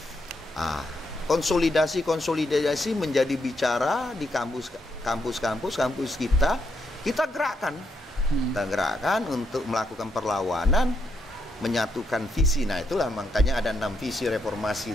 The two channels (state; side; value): normal; both; correlation 0.79